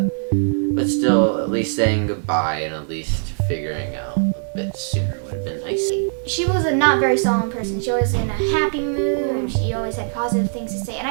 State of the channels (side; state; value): left; silent; digital silence